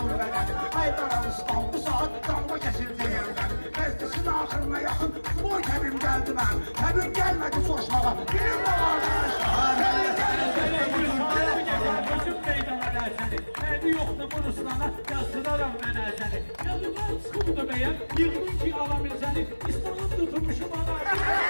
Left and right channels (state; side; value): inverted; both; correlation -1.00